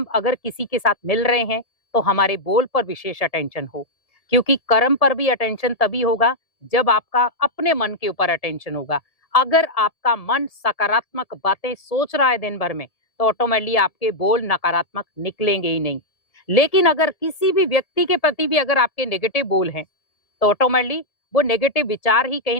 अगर किसी के साथ मिल रहे हैं तो हमारे बोल पर विशेष अटेंशन हो, क्योंकि कर्म पर भी अटेंशन तभी होगा जब आपका अपने मन के ऊपर अटेंशन होगा। अगर आपका मन सकारात्मक बातें सोच रहा है दिन भर में तो ऑटोमेटिकली आपके बोल नकारात्मक निकलेंगे ही नहीं। लेकिन अगर किसी भी व्यक्ति के प्रति भी अगर आपके नेगेटिव बोल हैं तो ऑटोमेटिकली वो नेगेटिव विचार ही कहीं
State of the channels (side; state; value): right; late; 1.7 ms